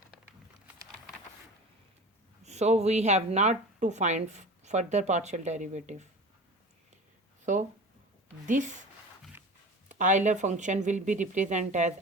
so we have not to find further partial derivative. So this Euler function will be represented as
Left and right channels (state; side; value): normal; both; correlation 0.35